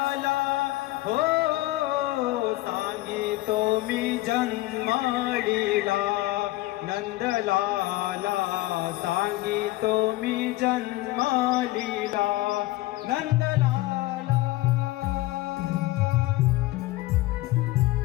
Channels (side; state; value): right; quieter; 18.3 dB